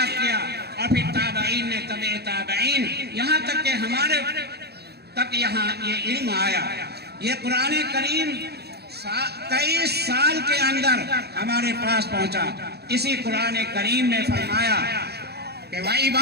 کیا، اور پھر تابعین نے تبع تابعین، یہاں تک کہ ہمارے تک یہاں یہ علم آیا۔ یہ قرآن کریم 23 سال کے اندر ہمارے پاس پہنچا۔ اسی قرآن کریم میں فرمایا کہ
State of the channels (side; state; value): left; late; 0.47 ms